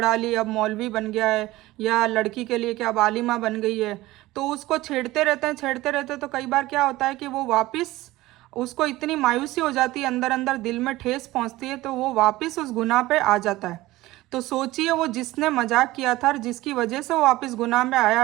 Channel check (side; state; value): left; quieter; 18.0 dB